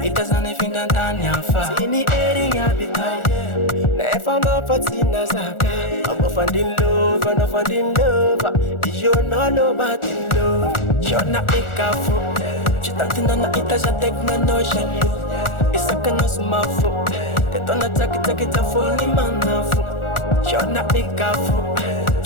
ita zane finda ndani afa Sini eri ya bita Na efa mafatina zaka Abo fandin love, no fandin love Ijo no LOWBATTE love Shona ikafu Chitatina na ita ja tekna no shalu Isaka no sumafu Tetona taki taki tafuni manafu Shona ikafu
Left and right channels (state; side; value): late; right; 1.4 ms